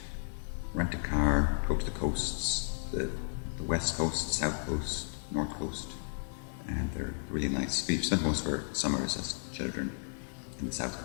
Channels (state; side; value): silent; right; 55 dB below the other